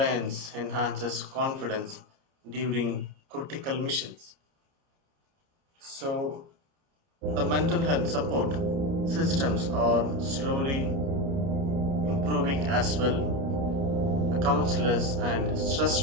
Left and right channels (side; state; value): left; late; 29 ms